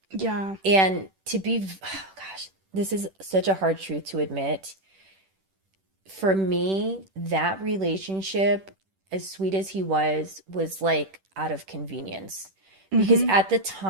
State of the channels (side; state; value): left; late; 10 ms